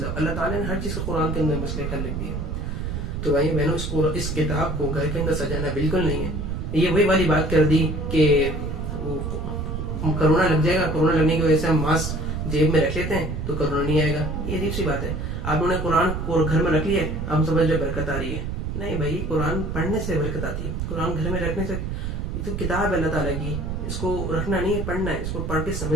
اللہ تعالیٰ نے ہر چیز کا قرآن کے اندر مسئلے حل لکھ دیا. تو بھائی میں نے اس کتاب کو گھر کے اندر سجانا بالکل نہیں ہے. یہ وہی والی بات کر دی کہ کرونا لگ جائے گا، کرونا لگنے کی وجہ سے ہم ماسک جیب میں رکھ لیتے ہیں تو کرونا نہیں آئے گا. یہ عجیب سی بات ہے. آپ نے قرآن کو گھر میں رکھ لیا، ہم سمجھ رہے برکت آ رہی ہے. نہیں بھائی، قرآن پڑھنے سے برکت آتی ہے. قرآن گھر میں رکھنے سے، یہ تو کتاب ہے اللہ تعالیٰ کی، اس کو رکھنا نہیں ہے، پڑھنا ہے، اس کو پڑھ کے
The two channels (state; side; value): noise; right; rumble, 3 dB below the sound